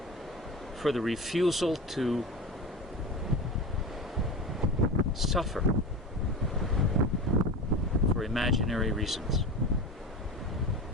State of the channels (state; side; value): normal; both; correlation 0.28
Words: for the refusal to suffer for imaginary reasons.